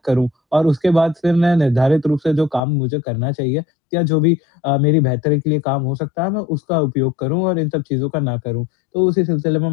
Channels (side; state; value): right; drops out; at 2.6 s